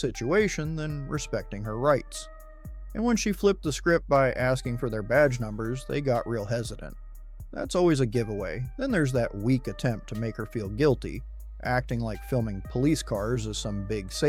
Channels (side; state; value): both; identical; correlation 1.00